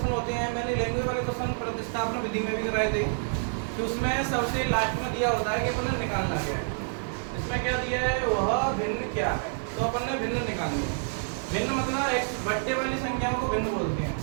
होते हैं। मैंने लैंग्वेज वाले क्वेश्चन प्रतिस्थापन विधि में भी कराए थे, कि उसमें सबसे लास्ट में दिया होता है कि अपन ने निकालना क्या है। इसमें क्या दिया है, वह भिन्न क्या है, तो अपन ने भिन्न निकालनी है। भिन्न मतलब एक बट्टे वाली संख्याओं को भिन्न बोलते हैं।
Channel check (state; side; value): silent; left; digital silence